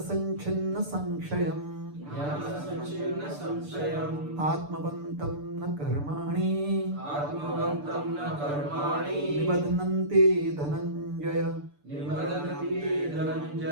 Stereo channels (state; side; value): late; left; 6.8 ms